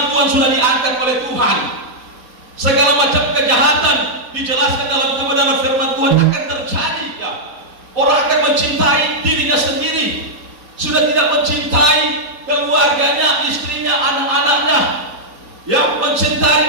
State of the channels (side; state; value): left; late; 4.1 ms